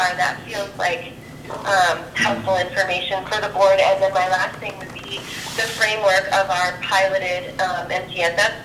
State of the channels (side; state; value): both; identical; correlation 1.00